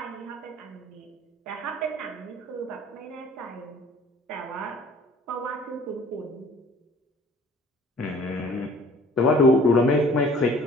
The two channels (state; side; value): normal; both; correlation 0.52